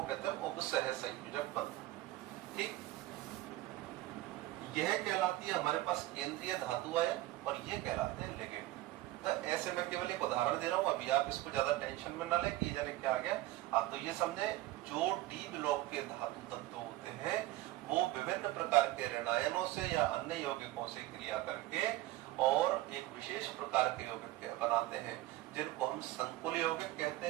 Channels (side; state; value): left; quieter; 16.8 dB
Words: कहते हैं उपसह संयोजक बंध। ठीक, यह कहलाती है हमारे पास केंद्रीय धातु आयन और ये कहलाते हैं लिगेंड। तो ऐसे मैं केवल एक उदाहरण दे रहा हूं, अभी आप इसको ज्यादा टेंशन में ना ले कि जाने क्या आ गया। आप तो ये समझे जो डी ब्लॉक के धातु तत्व होते हैं वो विभिन्न प्रकार के ऋणायनों से या अन्य यौगिकों से क्रिया करके और एक विशेष प्रकार के यौगिक बनाते हैं, जिनको हम संकुल यौगिक कहते